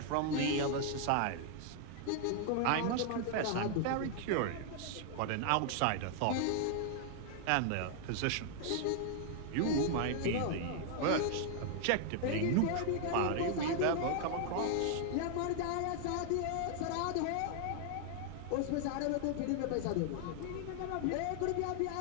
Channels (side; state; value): both; different; correlation 0.00